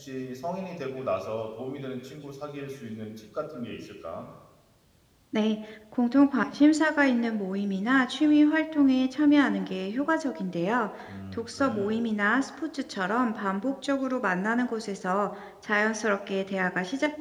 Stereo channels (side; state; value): both; identical; correlation 1.00